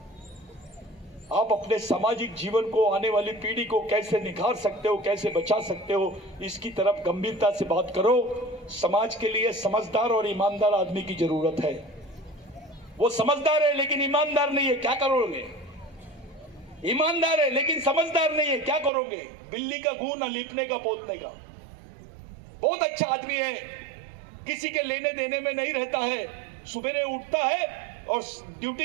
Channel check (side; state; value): left; drops out; at 18.9 s